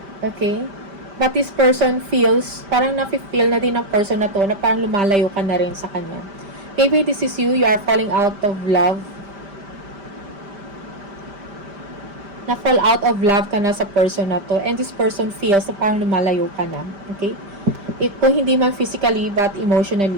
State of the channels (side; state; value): left; late; 5.1 ms